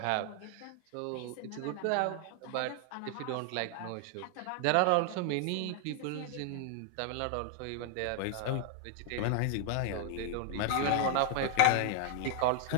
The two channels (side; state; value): both; different; correlation 0.00